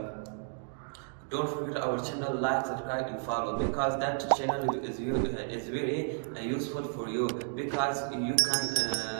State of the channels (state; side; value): silent; left; 56 dB below the other